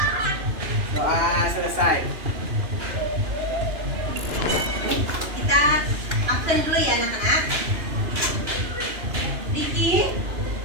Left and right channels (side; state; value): left; late; 2.9 ms